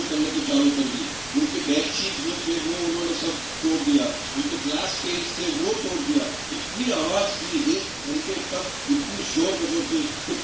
करने को चालू कर दी। उनके बेडशीट जो थे वो उन्होंने सब तोड़ दिया, उनके ग्लास केस थे वो तोड़ दिया। इतनी आवाज की, 1 घंटे तक इतनी शोर बजो थी तो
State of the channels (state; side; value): noise; right; rumble, 20 dB below the sound